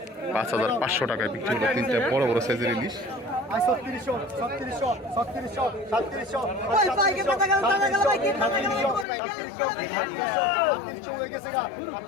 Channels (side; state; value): right; drops out; at 9.1 s